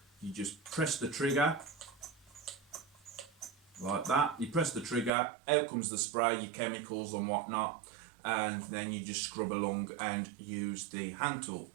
you just press the trigger like that. You press the trigger, out comes the spray, your chemicals and whatnot, and then you just scrub along and use the hand tool.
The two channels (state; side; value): drops out; left; at 5.1 s